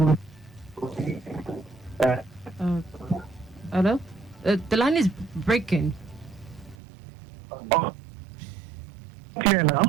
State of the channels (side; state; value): left; drops out; at 6.8 s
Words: Hello? The line is breaking. Clear